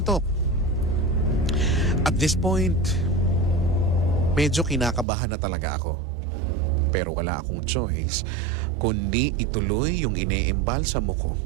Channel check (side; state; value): left; drops out; at 5.1 s